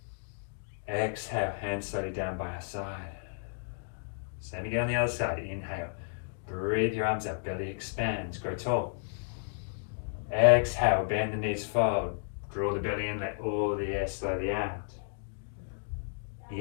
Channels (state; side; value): silent; right; digital silence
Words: Exhale, hands slowly down by our side. Same again on the other side. Inhale, breathe your arms up, belly expands, grow tall. Exhale, bend the knees, fold. Draw the belly in, let all the air slowly out.